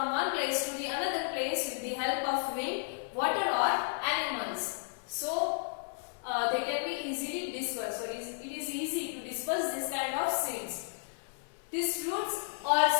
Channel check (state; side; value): silent; right; digital silence